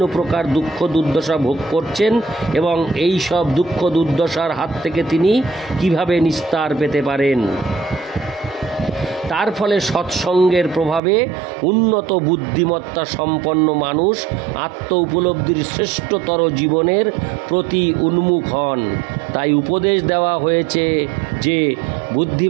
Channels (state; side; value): drops out; left; at 11.0 s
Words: প্রকার দুঃখ দুর্দশা ভোগ করছেন এবং এই সব দুঃখ দুর্দশার হাত থেকে তিনি কিভাবে নিস্তার পেতে পারেন। তার ফলে সৎসঙ্গের প্রভাবে উন্নত বুদ্ধিমত্তা সম্পন্ন মানুষ আত্ম উপলব্ধির শ্রেষ্ঠতর জীবনের প্রতি উন্মুখ হন। তাই উপদেশ দেওয়া হয়েছে যে